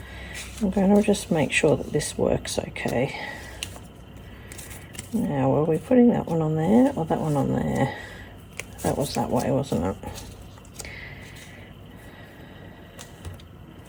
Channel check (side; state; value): both; identical; correlation 1.00